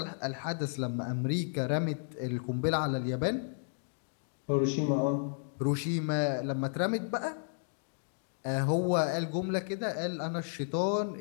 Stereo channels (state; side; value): silent; right; digital silence